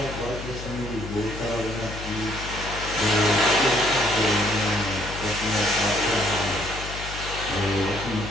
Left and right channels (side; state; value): left; noise; hum, 10 dB below the sound